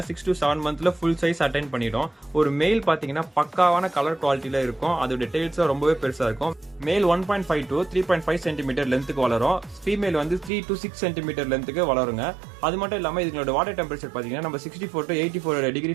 6 to 7 மந்த்ல ஃபுல் சைஸ் அட்டைன் பண்ணிடும். ஒரு மெயில் பாத்தீங்கன்னா பக்காவான கலர் குவாலிட்டியில இருக்கும். அதோட டெய்ல்ஸும் ரொம்பவே பெருசா இருக்கும். மேல் 1.5 to 3.5 சென்டிமீட்டர் லென்த்துக்கு வளரும். ஃபீமேல் வந்து 3 to 6 சென்டிமீட்டர் லென்த்துக்கு வளருங்க. அது மட்டும் இல்லாமல் இதுங்களோட வாட்டர் டெம்பரேச்சர் பார்த்தீங்கன்னா நம்ம 64 to 84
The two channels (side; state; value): left; drops out; at 10.5 s